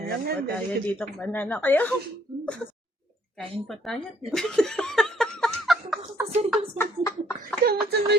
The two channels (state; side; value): normal; both; correlation 0.65